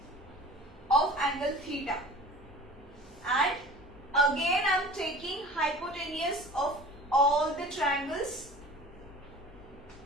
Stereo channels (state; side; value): normal; both; correlation 0.41